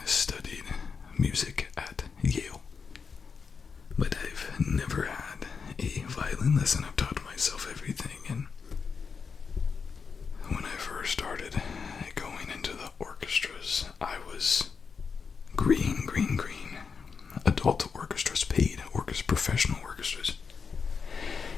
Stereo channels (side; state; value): right; quieter; 5.6 dB